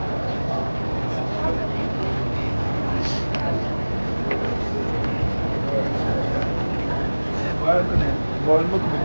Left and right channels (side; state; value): both; inverted; correlation -1.00